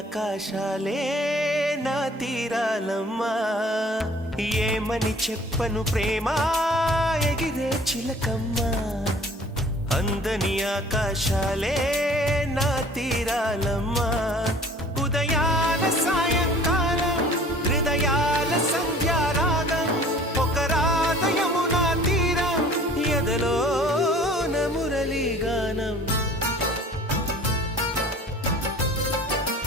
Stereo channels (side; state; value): both; normal; correlation 0.50